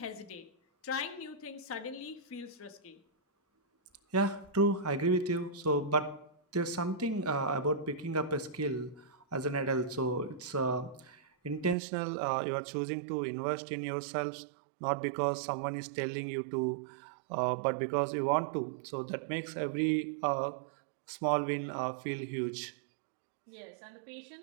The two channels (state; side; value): drops out; left; at 11.8 s